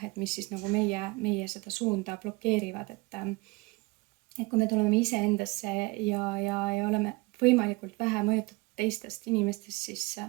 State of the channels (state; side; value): quieter; left; 24.3 dB